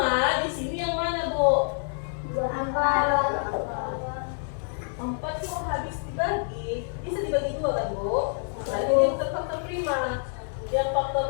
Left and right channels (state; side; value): silent; right; 60 dB below the other